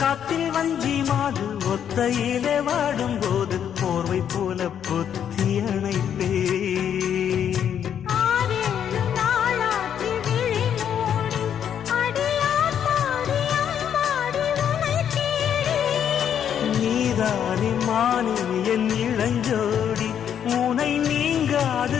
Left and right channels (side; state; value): right; quieter; 8.9 dB